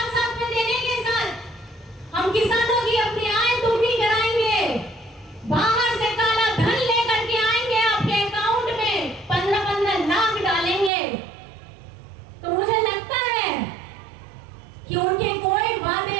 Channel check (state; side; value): drops out; left; at 10.9 s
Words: साथ में देने के साथ हम किसानों की अपनी आय दोगुनी कराएंगे, बाहर से काला धन लेकर के आएंगे, आपके अकाउंट में 15-15 लाख डालेंगे। तो मुझे लगता है कि उनके कोई